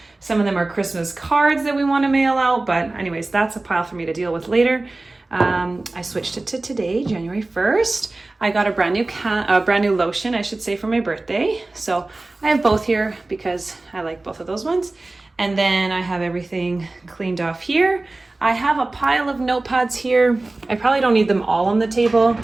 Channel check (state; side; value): quieter; left; 3.0 dB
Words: Some of them are Christmas cards that we want to mail out. But anyways, that's a pile for me to deal with later. I switched it to today, January 1st. I got a brand new lotion, I should say, for my birthday. So I have both here because I like both of those ones. And then I have everything cleaned off here. I have a pile of notepads here. I probably don't need them all on the table,